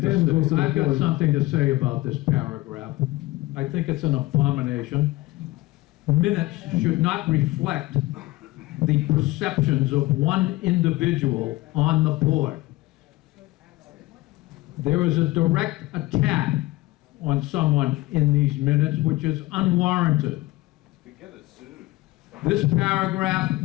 then goes to say. the I've got board. something to say about this paragraph. I think it's an abomination. Minutes should not reflect the perceptions of one individual on the board. There is a direct attack on someone in these minutes, which is unwarranted. This paragraph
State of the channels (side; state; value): right; quieter; 19.4 dB